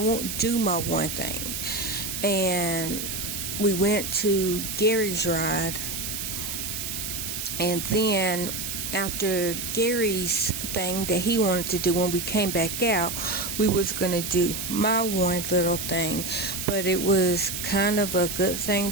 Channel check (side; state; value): right; noise; hiss, 4 dB below the sound